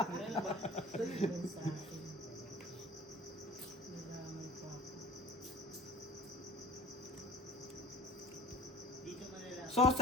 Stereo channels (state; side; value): normal; both; correlation 0.44